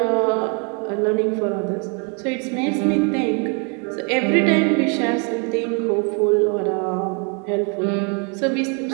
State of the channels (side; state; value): left; quieter; 36.9 dB